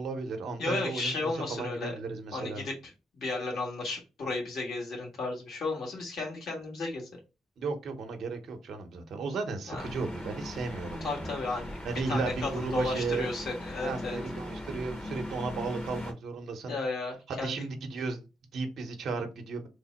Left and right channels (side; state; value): both; normal; correlation 0.74